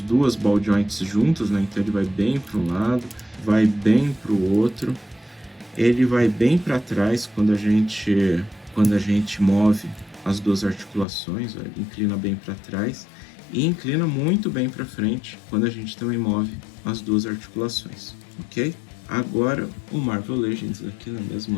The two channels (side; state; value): right; drops out; at 11.1 s